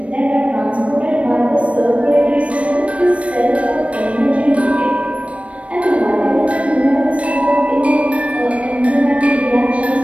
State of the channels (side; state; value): left; late; 0.063 ms